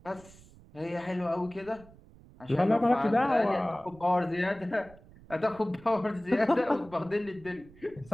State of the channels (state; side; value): noise; right; rumble, 23 dB below the sound